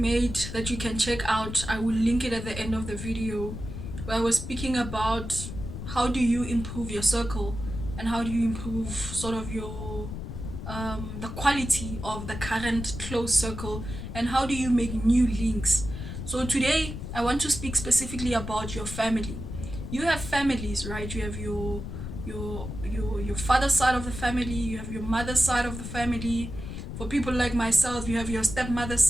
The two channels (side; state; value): left; noise; rumble, 7 dB below the sound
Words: that you can check out. I will link it at the end of the video, where I was speaking about how do you improve your circle and how do you improve sort of your the quality of the current close circle, and how do you make new links. So today I want to speak specifically about your family. You have families, right? You have your father's side of the family, you have your mother's side of the family. For people like myself, you have your stepmother's